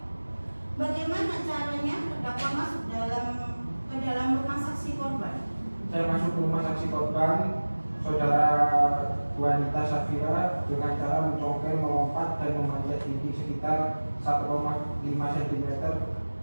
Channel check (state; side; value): inverted; both; correlation -1.00